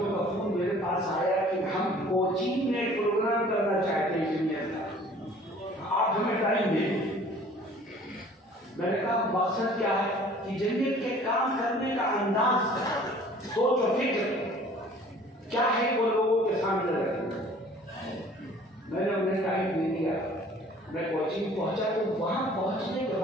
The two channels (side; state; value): both; normal; correlation 0.51